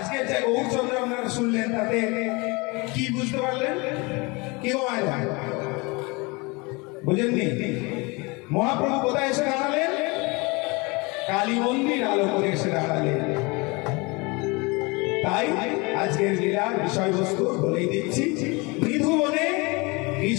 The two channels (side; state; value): right; quieter; 26.8 dB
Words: যে গৌরচন্দ্র আপনারা শুনলেন তাতে কি বুঝতে পারলেন? কি বুঝেননি? মহাপ্রভু কোথায় এসে দাঁড়ালেন? কালী মন্দির আলো করে এসে দাঁড়ালেন। তাই আজকের লীলার বিষয়বস্তু বলেই দিচ্ছি, মৃধুবনে